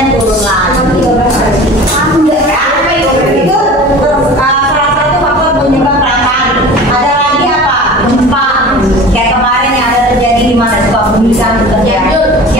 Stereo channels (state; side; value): normal; both; correlation 0.39